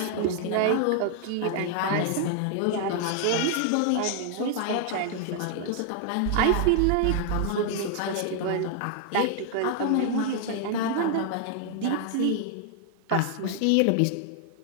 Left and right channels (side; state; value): both; different; correlation 0.00